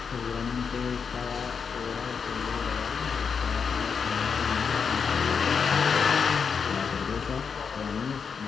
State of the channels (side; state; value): right; quieter; 6.1 dB